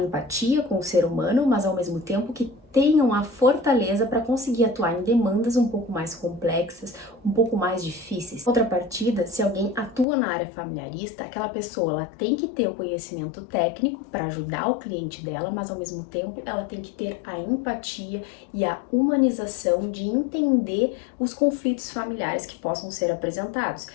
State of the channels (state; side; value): drops out; right; at 10.1 s